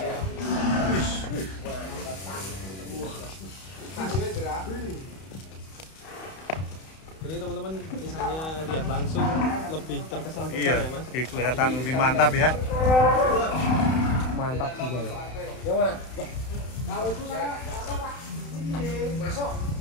Jadi teman-teman misalnya lihat langsung lebih terkesan besar Iya, ya Mas? kelihatan lebih mantap ya. Mantap juga ya. Yang mana? Kalau itu saya apa Pak?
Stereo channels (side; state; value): right; late; 31 ms